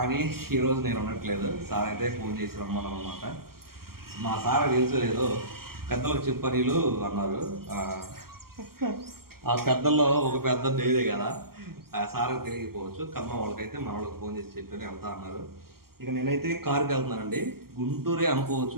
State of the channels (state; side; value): late; left; 0.93 ms